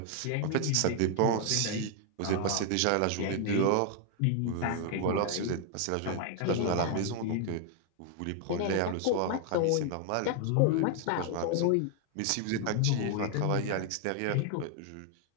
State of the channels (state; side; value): different; both; correlation 0.00